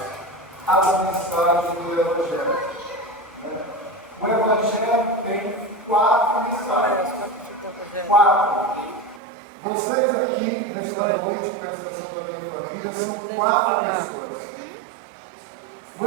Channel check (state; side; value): drops out; left; at 9.2 s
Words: as mensagens do Evangelho. O Evangelho tem 4 mensagens. 4. Vocês aqui, nesta noite, presta atenção da minha família, são 4 pessoas. O